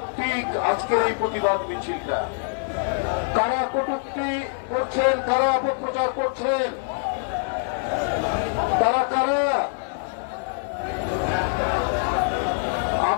আজকের এই প্রতিবাদ মিছিলটা। কারা কটূক্তি করছেন, কারা অপপ্রচার করছেন, তারা কারা?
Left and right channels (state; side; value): silent; right; 61 dB below the other